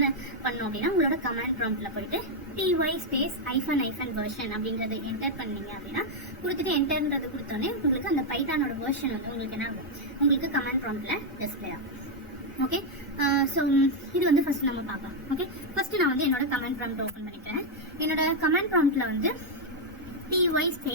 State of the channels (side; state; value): both; normal; correlation 0.00